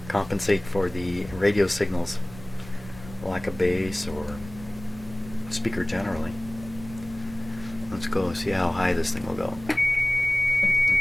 Compensate for the radio signals lack of bass or speaker generally. Let's go see how high this thing will go.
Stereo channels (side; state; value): right; noise; rumble, 16 dB below the sound